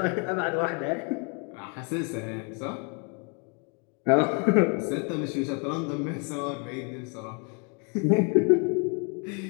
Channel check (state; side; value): quieter; right; 36.0 dB